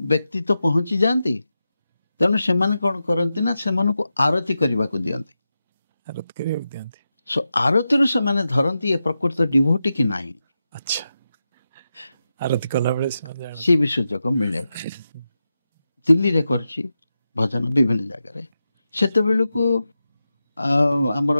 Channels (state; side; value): inverted; both; correlation -0.90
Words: ବ୍ୟକ୍ତି ତ ପହଞ୍ଚି ଯାଆନ୍ତି। ତେଣୁ ସେମାନେ କ'ଣ କରନ୍ତି ନା ସେମାନଙ୍କୁ ଆରତି କରିବାକୁ ଦିଅନ୍ତି। ଆରତିରୁ ସେମାନେ ଧରନ୍ତି ଏ ପ୍ରକୃତ ଡିଭୋଟି କି ନାହିଁ। ଆଚ୍ଛା। ଆରତି କଲାବେଳେ ସେ ବି ସୁଯୋଗ ମିଳେ। ଦିଲ୍ଲୀରେ କରିଛି ଭଜନ ବିଭିନ୍ନ ଜାଗାରେ। ସେତେବେଳକୁ ଆମର